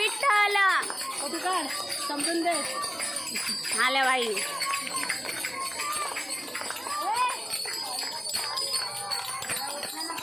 समजून दे आल्या बाई.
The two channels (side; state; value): both; identical; correlation 1.00